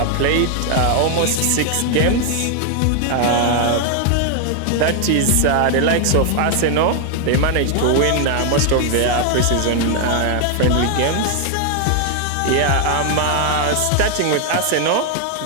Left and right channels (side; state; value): both; different; correlation 0.00